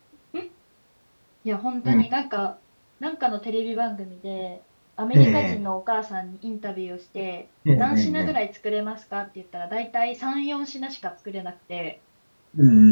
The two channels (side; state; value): both; inverted; correlation -1.00